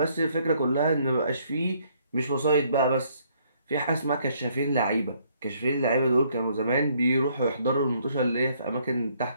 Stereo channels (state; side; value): inverted; both; correlation -0.67